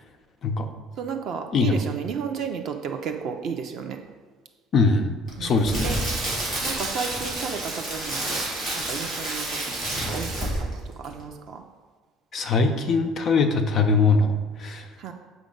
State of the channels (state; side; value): normal; both; correlation 0.51